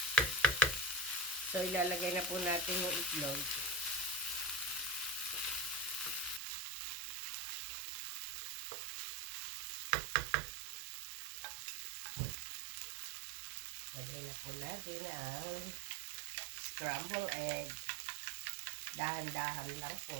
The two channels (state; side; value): drops out; left; at 6.4 s